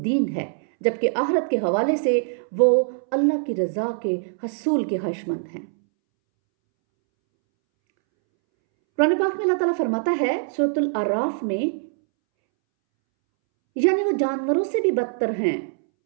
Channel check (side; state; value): left; silent; 63 dB below the other